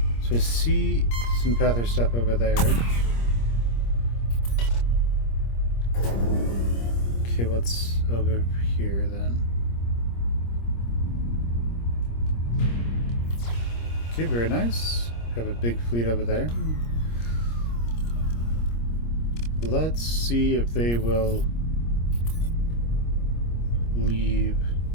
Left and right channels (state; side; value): late; right; 26 ms